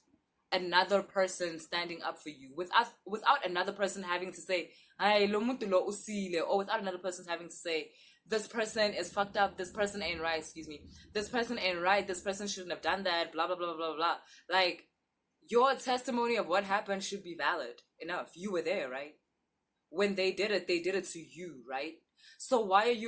another person standing up for you, without another person having to say, "Ay, lo muntu lo usile," or without another person having to say, "This person is fucked up, this person ain't right, this person ain't right, this person shouldn't have done that, blah blah blah blah blah." Like, your testimony of what happened should be valid enough. You were there, right? When they did it to you, right? So why are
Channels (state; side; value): identical; both; correlation 1.00